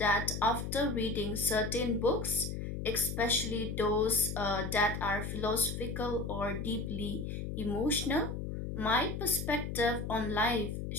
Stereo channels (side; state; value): left; noise; hum, 5 dB below the sound